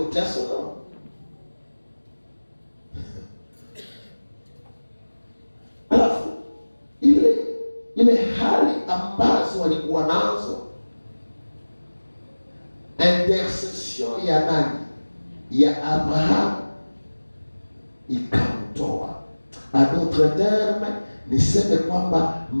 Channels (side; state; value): both; inverted; correlation -1.00